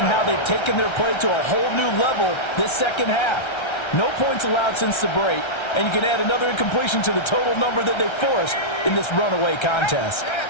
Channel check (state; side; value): late; right; 1.3 ms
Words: how they've taken their play to a whole new level this 2nd half. No points allowed since the break, and you can add another incompletion to the total number that they forced in this runaway contest.